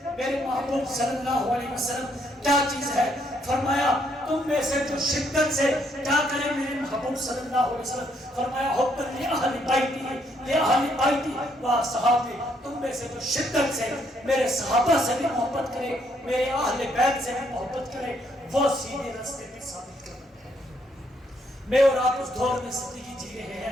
میرے محبوب صلی اللہ علیہ وسلم کیا چیز ہے؟ فرمایا تم میں سے جو شدت سے کیا کرے میرے محبوب صلی اللہ علیہ وسلم، فرمایا حب لأہل بیتی و صحابی، تم میں سے جو شدت سے میرے صحابہ سے بھی محبت کرے، میرے اہل بیت سے بھی محبت کرے، وہ سیدھے راستے پہ ثابت کرنا ہے۔ میں اور آپ اس دور میں زندگی جی رہے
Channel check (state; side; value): normal; both; correlation 0.72